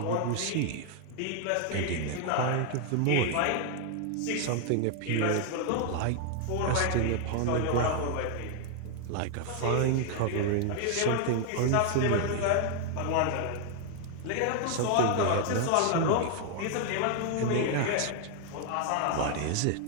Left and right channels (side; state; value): both; different; correlation 0.00